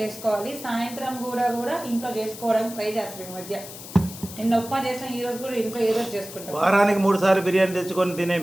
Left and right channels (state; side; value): noise; left; hiss, 13 dB below the sound